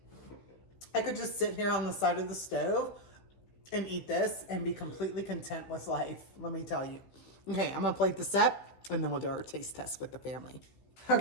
I could just sit here on the side of the stove and eat this and be completely content with life, let me tell you. Okay, I'm gonna plate this up and then we'll do our taste test with the family.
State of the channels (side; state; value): right; late; 16 ms